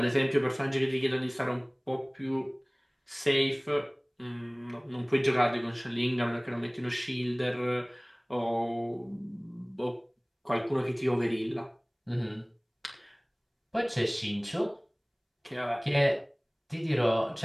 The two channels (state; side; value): identical; both; correlation 1.00